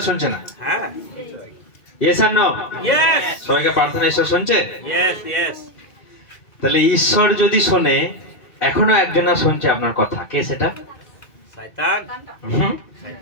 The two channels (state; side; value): late; right; 2.4 ms